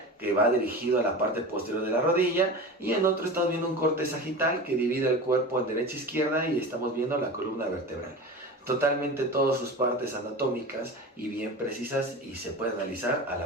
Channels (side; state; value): both; normal; correlation 0.30